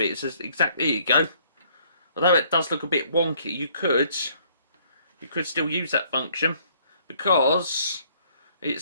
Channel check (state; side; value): inverted; both; correlation -0.62